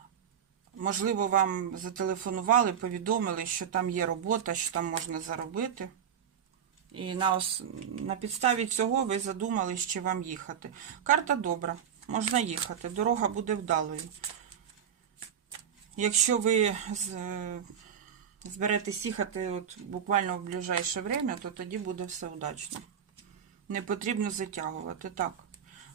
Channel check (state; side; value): quieter; left; 8.4 dB